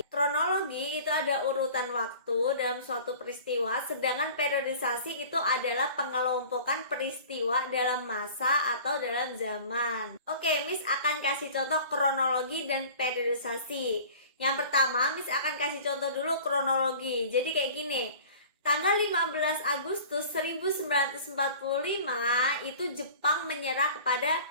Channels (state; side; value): inverted; both; correlation -0.44